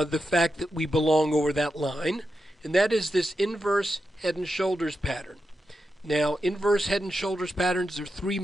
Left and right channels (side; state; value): both; normal; correlation 0.88